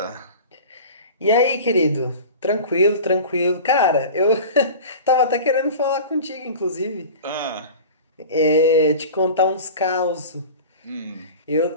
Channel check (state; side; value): inverted; both; correlation -0.36